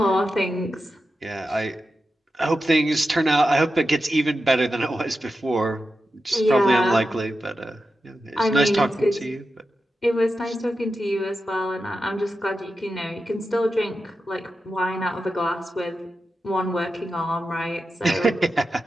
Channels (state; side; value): normal; both; correlation 0.90